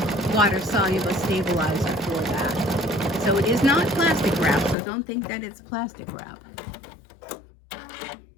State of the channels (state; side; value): drops out; right; at 4.8 s